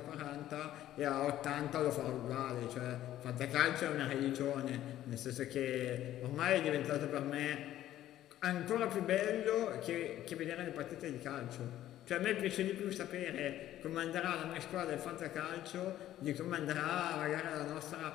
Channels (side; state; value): right; quieter; 13.0 dB